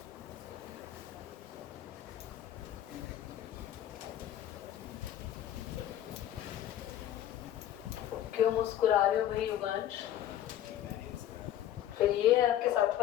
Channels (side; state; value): right; quieter; 11.6 dB